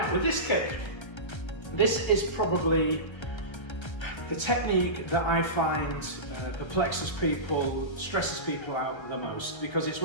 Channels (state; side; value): late; right; 1.3 ms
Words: with this kick, this is probably the technique that I find perplexes people, stresses people out the most, because it's